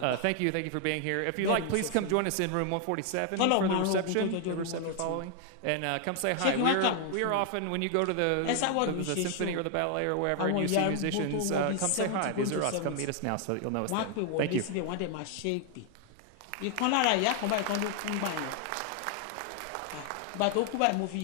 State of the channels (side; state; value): both; different; correlation 0.00